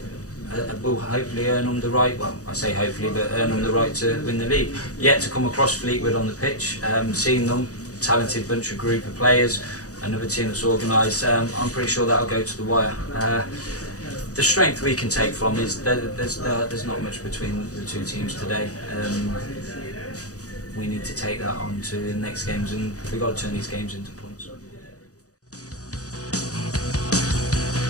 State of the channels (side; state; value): right; late; 0.66 ms